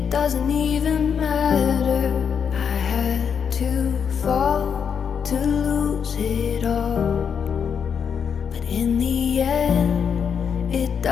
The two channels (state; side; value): quieter; right; 7.1 dB